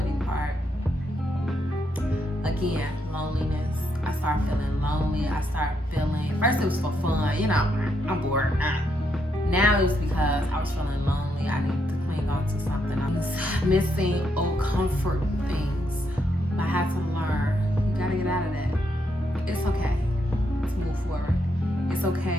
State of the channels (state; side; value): normal; both; correlation 0.78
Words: part, again, loneliness. I started feeling lonely. I started feeling, first it was for fun, you know, I'm bored. Now it was because I was feeling lonely. I needed to cling on to something. I was missing old comfort things. I had to learn. You gotta get out of that. It's okay to move forward. It's